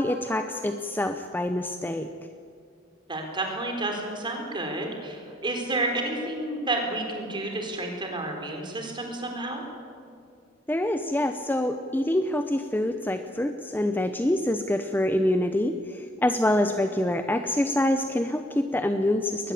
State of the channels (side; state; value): both; normal; correlation 0.67